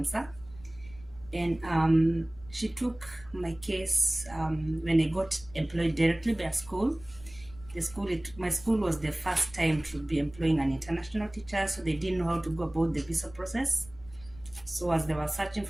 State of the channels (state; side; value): noise; left; rumble, 21 dB below the sound